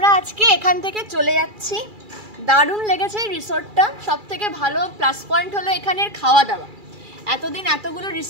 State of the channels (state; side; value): late; left; 2.3 ms